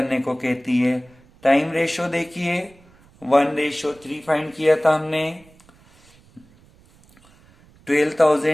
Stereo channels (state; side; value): noise; right; rumble, 29 dB below the sound